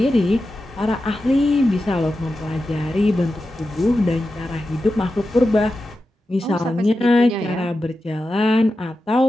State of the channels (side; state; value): both; normal; correlation 0.91